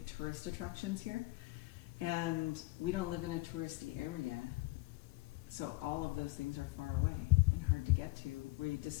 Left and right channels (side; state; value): right; quieter; 22.2 dB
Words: tourist attractions here. And we don't live in a touristy area. So all of those things are far away and hard to get to. Were you